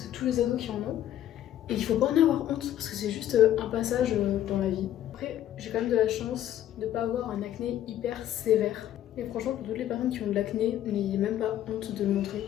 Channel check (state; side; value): quieter; right; 12.0 dB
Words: tous les ados qui en ont. Et il faut pas en avoir honte parce que c'est juste un passage dans la vie. Après j'ai quand même de la chance de pas avoir un acné hyper sévère. Et franchement pour toutes les personnes qui ont de l'acné, n'ayez même pas honte de le montrer.